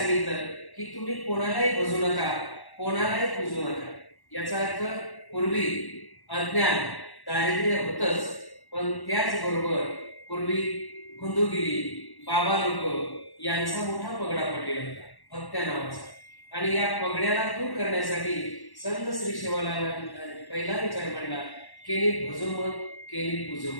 की तुम्ही कोणालाही भजू नका, कोणालाही पूजू नका. याचा अर्थ पूर्वी अज्ञान, दारिद्र्य होतच, पण त्याचबरोबर पूर्वी गुंदुगिरी, बाबा लोक यांचा मोठा पगडा पडलेला होता, भक्त्या नावाचा. आणि या पगड्याला दूर करण्यासाठी संत श्री सेवालाल पहिला विचार मांडला, केली भजोमत, केली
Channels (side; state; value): right; late; 1.1 ms